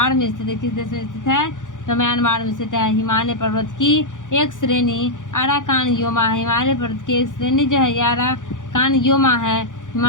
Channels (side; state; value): right; late; 0.87 ms